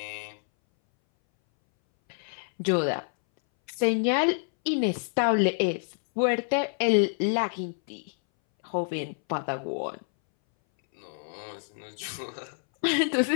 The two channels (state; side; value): silent; right; 60 dB below the other